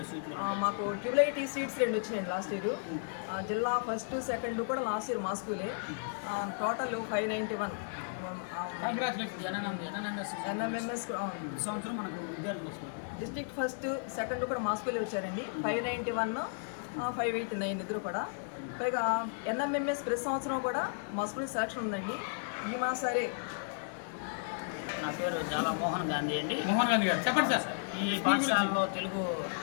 మాకు ట్యూబ్లైటీ సీట్స్ 2 వచ్చినాయండి లాస్ట్ ఇయర్. జిల్లా ఫస్ట్ సెకండ్ కూడా లాస్ట్ ఇయర్ మా స్కూలే. Total 591 NMMS district first second కూడా మా స్కూలే వచ్చారండి. 591 589 ఇద్దరు కూడా. పైగా ఎన్ఎంఎంఎస్ ప్రతి సంవత్సరం కూడా మా స్కూల్ సెలక్షన్ ఉందండి. ఈ మా సరే. నా పేరు చాలా మోహన్ గాంధీ అండి. మోహన్ గాంధీ గారు, చెప్పండి సార్. ఈ పాఠశాలలో తెలుగు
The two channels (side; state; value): right; silent; digital silence